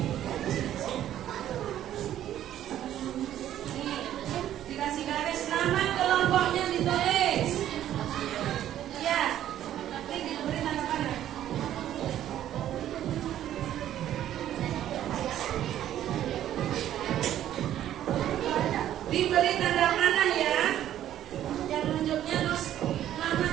Nih, dikasih garis, nama kelompoknya ditulis. Ya, ini diberi tanda panah. Diberi tanda panah ya. Yang nunjuknya terus nama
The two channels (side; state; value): left; quieter; 11.8 dB